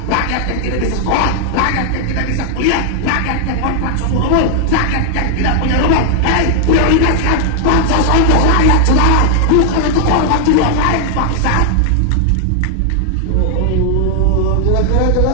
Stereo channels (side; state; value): both; different; correlation 0.00